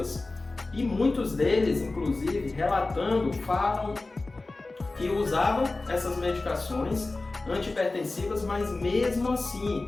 E muitos deles, inclusive, relatando, falam que usavam essas medicações antihipertensivas, mas mesmo assim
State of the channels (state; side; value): quieter; right; 3.3 dB